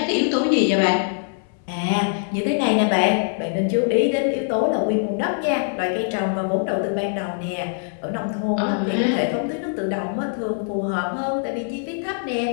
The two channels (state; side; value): silent; right; 64 dB below the other